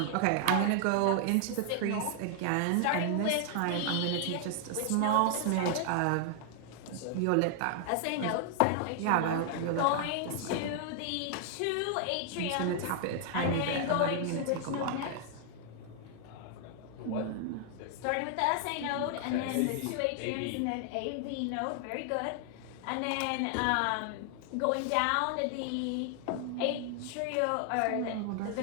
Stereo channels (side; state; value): both; different; correlation 0.00